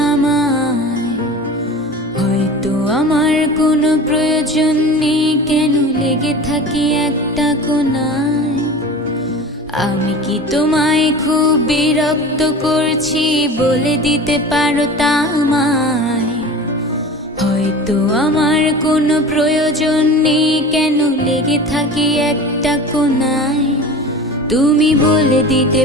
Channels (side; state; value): both; normal; correlation 0.35